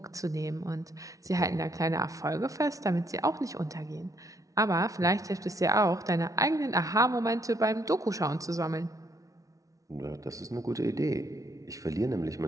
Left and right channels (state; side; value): late; left; 0.17 ms